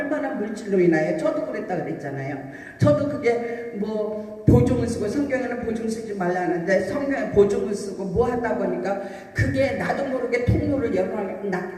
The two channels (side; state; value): both; identical; correlation 1.00